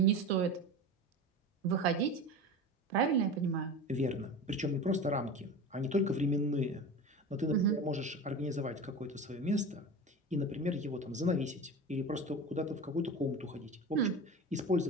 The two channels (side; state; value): both; normal; correlation 0.30